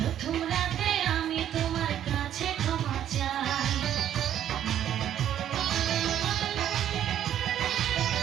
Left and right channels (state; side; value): quieter; left; 10.7 dB